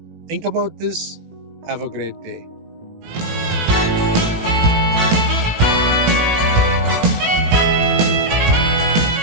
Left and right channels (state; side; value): late; left; 18 ms